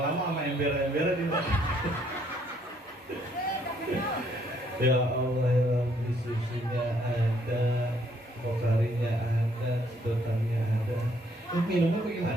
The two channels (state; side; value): normal; both; correlation 0.68